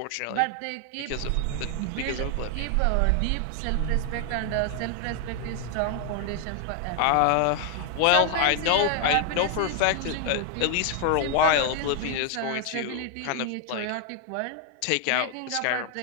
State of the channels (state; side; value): different; both; correlation 0.00